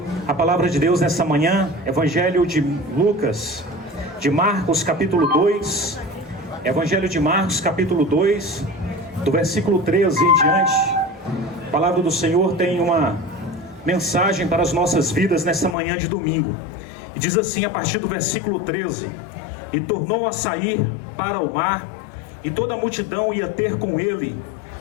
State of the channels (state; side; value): drops out; right; at 15.8 s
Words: a palavra de Deus nessa manhã. Evangelho de Lucas, de Marcos capítulo 2. Evangelho de Marcos capítulo 2, do versículo 13 em diante. A palavra do Senhor tem uma mensagem para as nossas vidas nessa manhã de domingo. E diz assim a partir do versículo 13: E tornou a sair para o mar, e toda a multidão ia ter com ele,